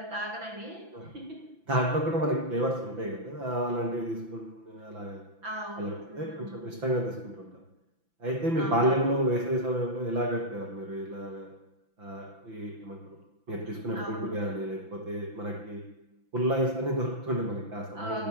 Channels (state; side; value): late; left; 5.9 ms